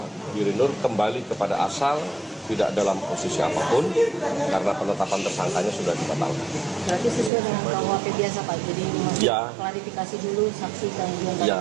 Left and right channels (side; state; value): left; drops out; at 7.3 s